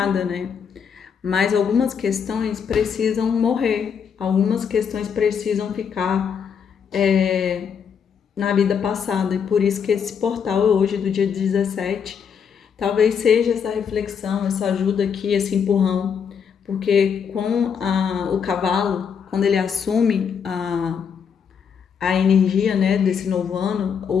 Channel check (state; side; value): quieter; right; 7.0 dB